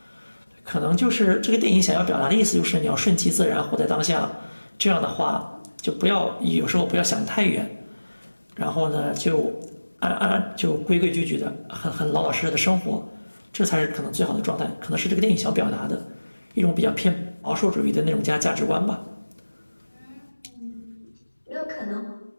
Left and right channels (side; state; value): both; inverted; correlation -1.00